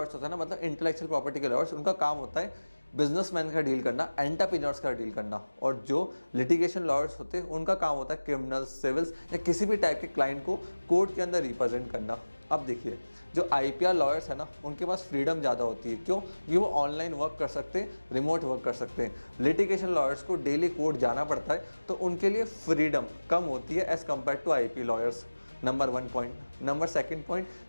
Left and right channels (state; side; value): inverted; both; correlation -1.00